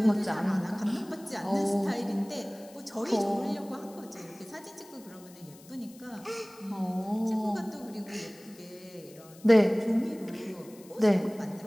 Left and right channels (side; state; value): left; noise; hiss, 23 dB below the sound